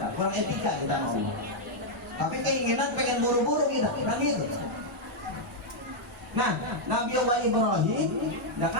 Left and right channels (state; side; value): normal; both; correlation -0.03